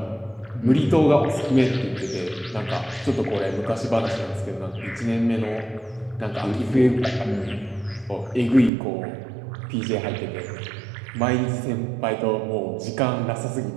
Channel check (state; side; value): drops out; left; at 8.7 s